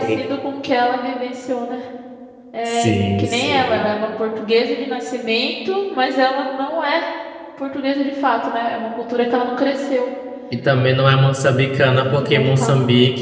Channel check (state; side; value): identical; both; correlation 1.00